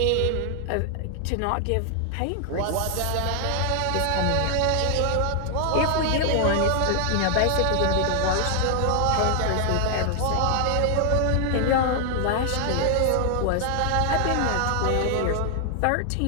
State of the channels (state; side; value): different; both; correlation 0.00